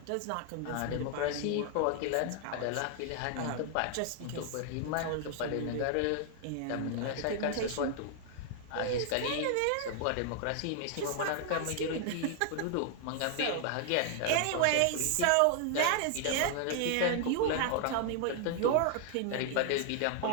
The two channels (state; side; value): different; both; correlation 0.00